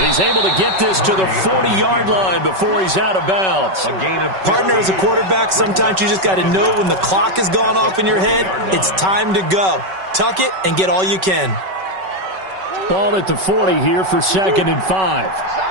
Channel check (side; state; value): left; late; 5.3 ms